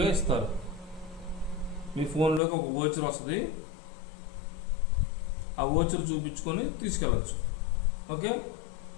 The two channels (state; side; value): drops out; right; at 2.4 s